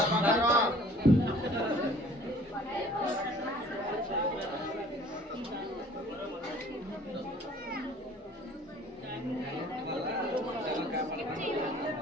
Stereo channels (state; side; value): normal; both; correlation 0.52